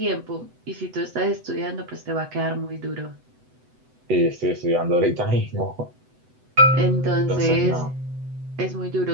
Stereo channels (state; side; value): late; left; 8.0 ms